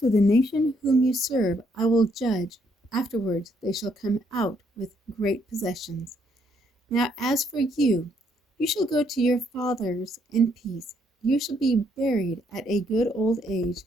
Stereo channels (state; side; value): normal; both; correlation 0.71